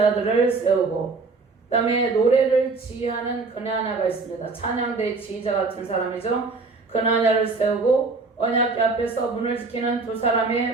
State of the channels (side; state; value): left; quieter; 4.0 dB